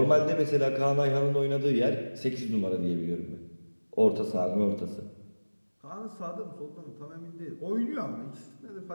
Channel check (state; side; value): inverted; both; correlation -1.00